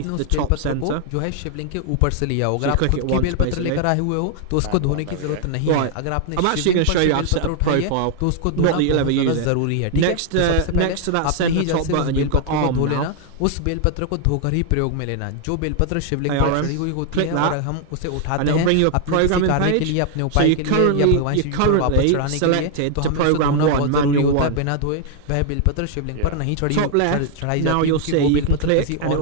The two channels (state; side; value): different; both; correlation 0.00